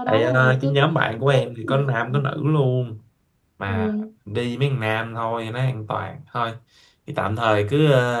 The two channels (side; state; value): both; identical; correlation 1.00